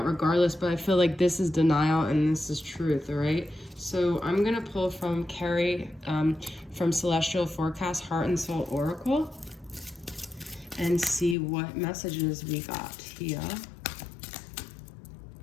regardless, but I feel like this is denial and this is truth, all right? So I'm going to pull from Carrie from Celestial Forecast Heart and Soul Oracle and see what messages we got here.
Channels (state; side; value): drops out; right; at 11.4 s